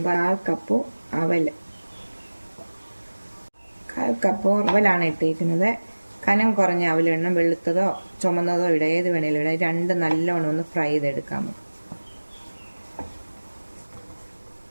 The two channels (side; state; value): both; inverted; correlation -1.00